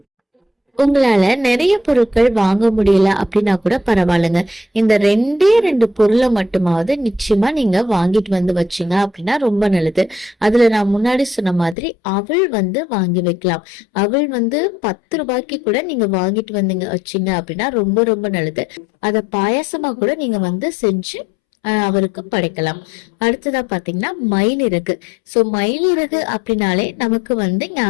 உங்களால நிறைய பொருட்கள் வாங்க முடியல அப்படின்னா கூட பரவாயில்லைங்க. இந்த ரெண்டு பொருளை மட்டுமாவது நிச்சயமா நீங்க வாங்கிட்டு வந்து வச்சீங்க அப்படின்னா ரொம்ப நல்லது. அதுல நான் முன்னாடி சொன்ன மாதிரி அவள் வாங்கி வைக்கலாம். அவள் 10 ரூபாய்க்கு கூட நீங்க வாங்கிட்டு வந்தீங்க வச்சீங்க அப்படின்னா ரொம்ப ரொம்ப நல்லது. அத பாயாசமா கூட நீங்க செஞ்சு அவருக்கு படைக்கலாம். அடுத்ததா பாத்தீங்கன்னா மயிலிறகு. சோ மயிலிறகு அப்படின்னாலே நமக்கு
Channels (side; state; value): right; drops out; at 11.8 s